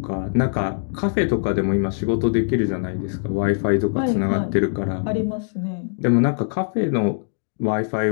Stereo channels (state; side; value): silent; right; digital silence